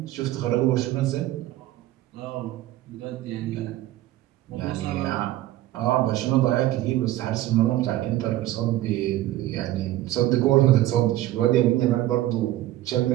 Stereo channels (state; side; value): quieter; left; 15.1 dB